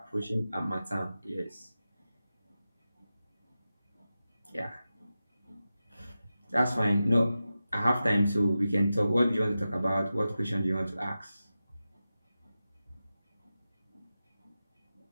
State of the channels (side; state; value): both; inverted; correlation -0.93